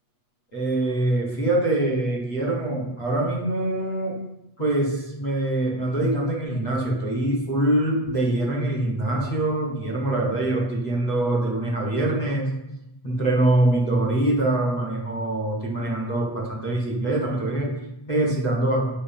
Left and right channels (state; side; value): late; right; 8.2 ms